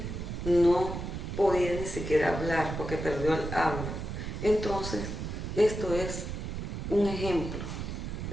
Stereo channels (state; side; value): noise; right; rumble, 5 dB below the sound